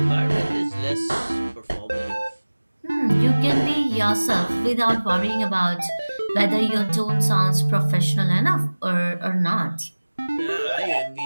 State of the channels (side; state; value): both; inverted; correlation -1.00